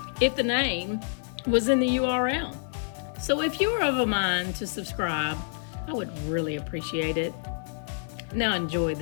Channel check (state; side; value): silent; right; 60 dB below the other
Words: if the name was in the URL. So if you're of a mind to subscribe, I would really appreciate it. Now enjoy